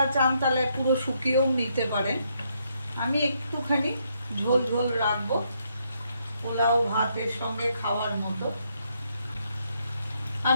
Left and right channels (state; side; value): inverted; both; correlation -0.76